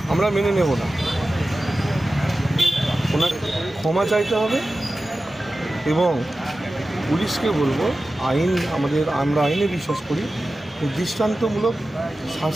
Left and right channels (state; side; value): normal; both; correlation 0.94